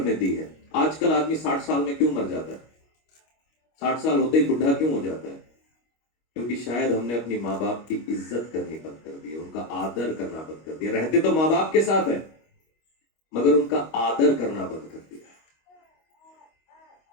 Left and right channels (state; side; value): late; right; 25 ms